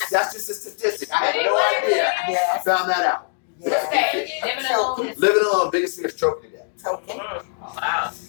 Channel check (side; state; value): right; silent; digital silence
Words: That's just a statistic. I had no idea. I found that out. Living alone, biggest fear is choking to death. Choking. Wow.